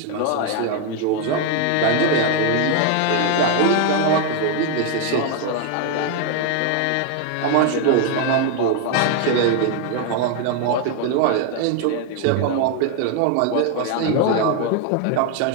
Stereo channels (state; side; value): different; both; correlation 0.01